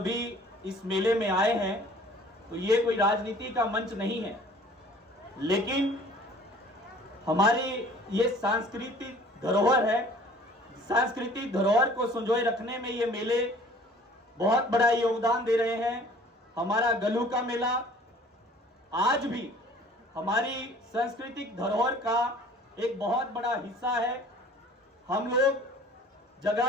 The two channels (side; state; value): both; normal; correlation 0.50